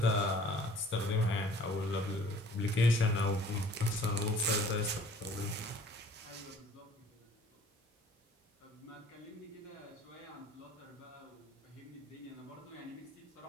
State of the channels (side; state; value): both; normal; correlation 0.52